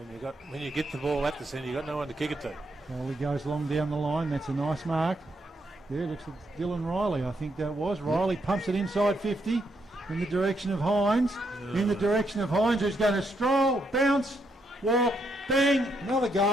When you get the ball at the centre, you've got no one to kick it to. Foley goes long down the line. That's a nice mark. There, looks like Dylan Riley, I think that was. Riley pumps it inside 50 in the direction of Hines. In the direction of Hines, who's going to stroll, bounce, walk, bang, another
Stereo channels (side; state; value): both; normal; correlation 0.77